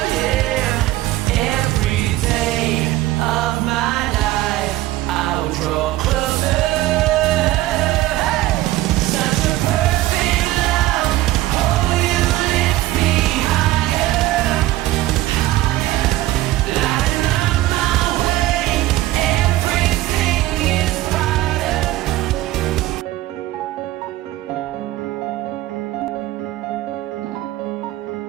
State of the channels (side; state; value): left; quieter; 16.3 dB